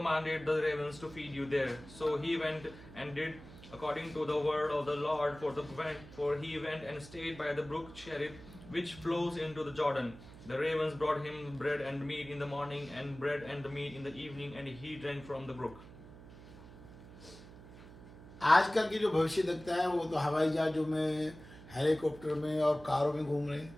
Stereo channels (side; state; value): right; noise; hum, 17 dB below the sound